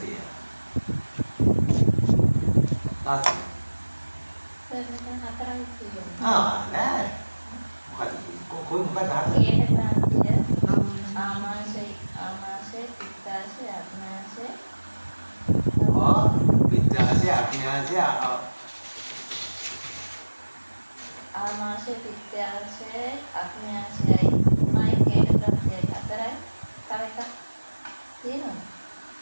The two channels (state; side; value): inverted; both; correlation -1.00